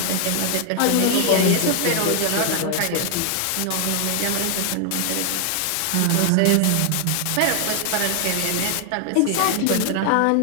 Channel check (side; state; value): both; different; correlation 0.00